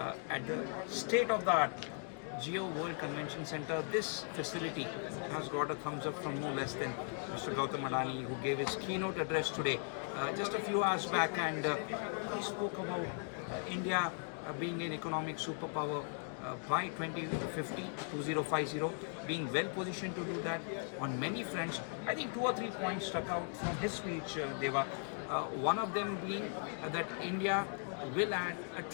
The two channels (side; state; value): right; silent; 52 dB below the other